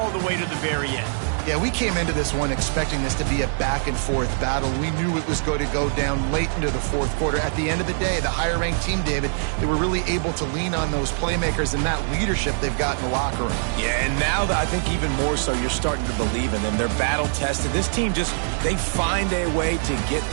the way to the very end. Yeah, we came into this one expecting this to be a back-and-forth battle. We knew it was going to go down late into the fourth quarter. At the end of the day, the higher-ranked team, David, they were really able to lean on those playmakers and that leadership they've got in the locker room. Yeah, and now I think even more so, you're starting to believe in them. They're battle-tested. This team they find a way to get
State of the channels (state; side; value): silent; left; 60 dB below the other